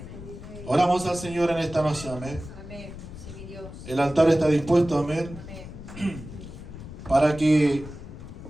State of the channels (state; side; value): noise; left; rumble, 13 dB below the sound